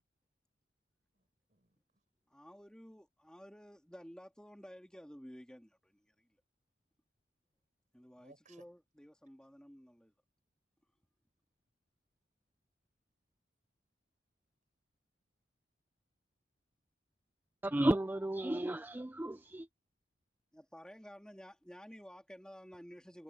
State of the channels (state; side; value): normal; both; correlation 0.94